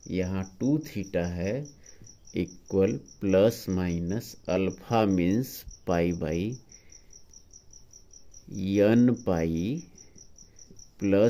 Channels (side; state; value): both; identical; correlation 1.00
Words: यहाँ 2 थीटा है equal plus minus alpha means π/n pi